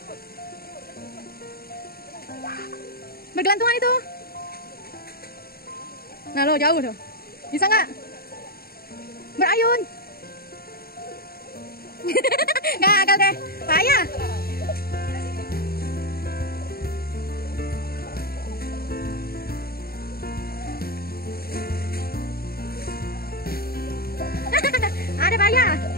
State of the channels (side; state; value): right; late; 0.44 ms